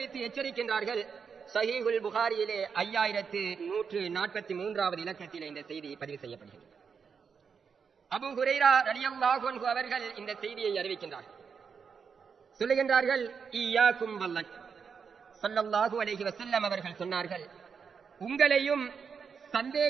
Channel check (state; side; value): quieter; left; 6.2 dB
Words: எச்சரிக்கின்றார்கள். ஸஹீஹுல் புகாரியிலே 5143வது இலக்கத்திலே இந்த செய்தி பதிவு செய்யப்படுகிறது. அபூ ஹுரைரா ரலியல்லாஹு அன்ஹு அவர்கள் இந்த செய்தியை அறிவிக்கின்றார்கள். சொல்லுகின்றார்கள், இய்யாக்கும் வல்லன். ஸல்லல்லாஹு அலைஹி வஸல்லம் அவர்கள் சொன்னார்கள், உங்களையும்